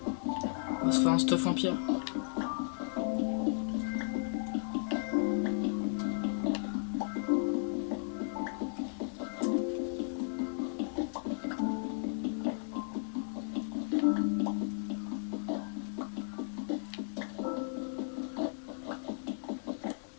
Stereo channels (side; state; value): right; silent; digital silence